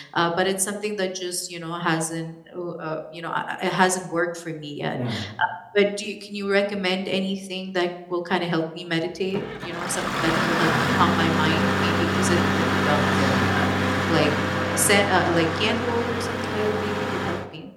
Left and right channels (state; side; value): identical; both; correlation 1.00